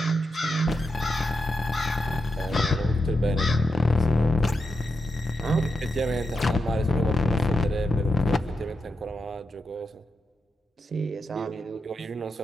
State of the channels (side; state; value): both; normal; correlation 0.87